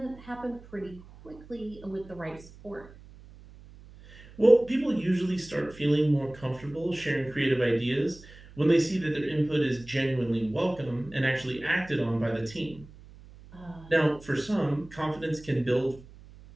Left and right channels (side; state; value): right; noise; hum, 20 dB below the sound